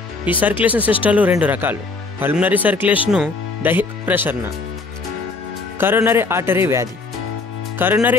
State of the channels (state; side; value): quieter; right; 3.8 dB